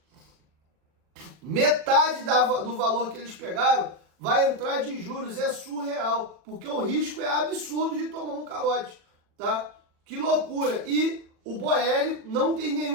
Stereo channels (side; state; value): left; late; 40 ms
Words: Metade do valor que eles pegaram vai entrar de juros. É surreal, porque o risco é absurdo de tomar um calote, tá? Que loucura. E o Boehly não tem